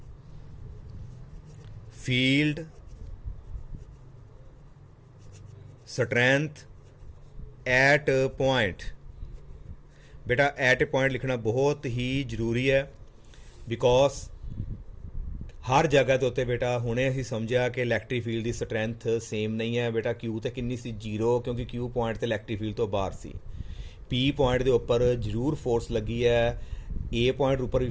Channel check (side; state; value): both; identical; correlation 1.00